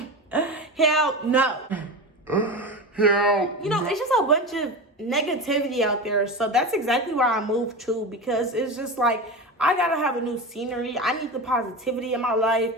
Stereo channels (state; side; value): normal; both; correlation 0.24